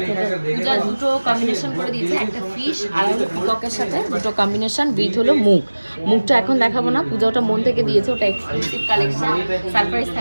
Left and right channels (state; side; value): inverted; both; correlation -1.00